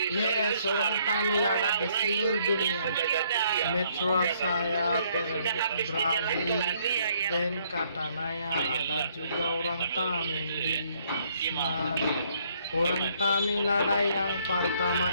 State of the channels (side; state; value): both; inverted; correlation -0.67